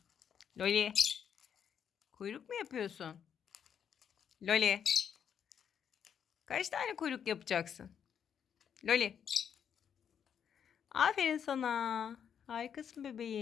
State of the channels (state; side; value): quieter; right; 8.1 dB